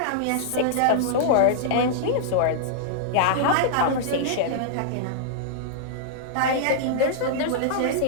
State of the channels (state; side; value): different; both; correlation -0.02